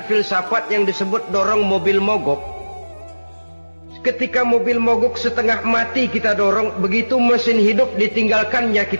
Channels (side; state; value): both; inverted; correlation -1.00